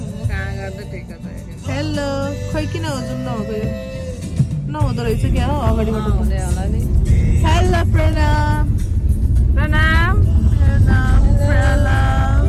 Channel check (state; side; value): identical; both; correlation 1.00